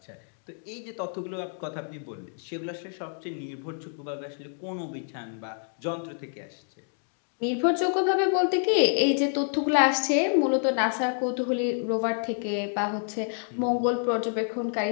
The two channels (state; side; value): silent; right; 59 dB below the other